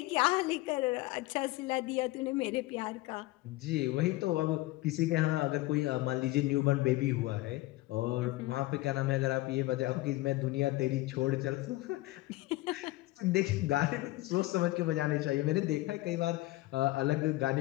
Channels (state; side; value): quieter; right; 18.9 dB